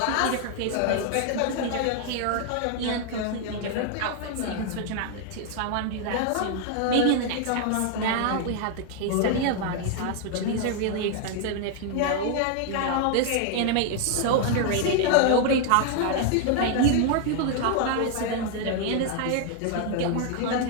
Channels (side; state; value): both; different; correlation 0.00